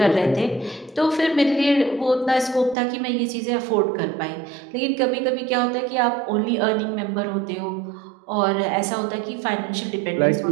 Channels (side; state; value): left; drops out; at 2.8 s